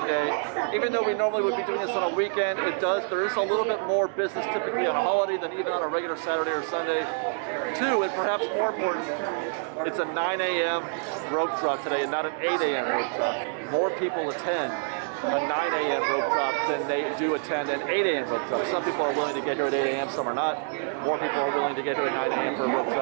Day. Even though we normally would be doing this on a weekend, there is a little bit more business typically on a holiday than even on a regular Saturday or Sunday. 2, and perhaps more important, it's a 9 a.m. rope drop today and not an 8 a.m. rope drop. More people attend a 9 a.m. rope drop than they do attend an 8 a.m. rope drop. Some people are willing to get here at 8 a.m., some are not. More people are willing to get here at 9 a.m. for a rope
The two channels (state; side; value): silent; left; digital silence